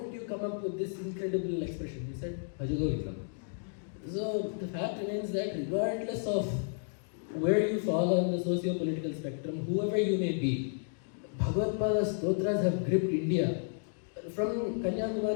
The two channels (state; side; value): silent; right; digital silence